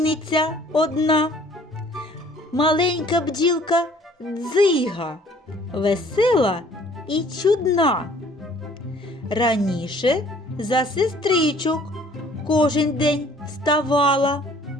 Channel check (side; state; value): both; normal; correlation 0.56